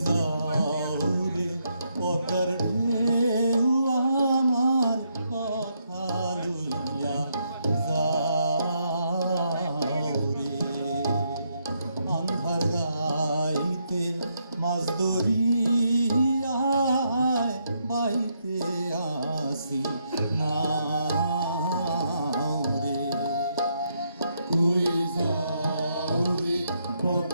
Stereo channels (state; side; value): inverted; both; correlation -0.77